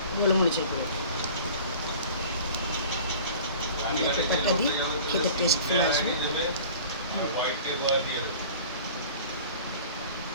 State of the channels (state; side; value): inverted; both; correlation -0.43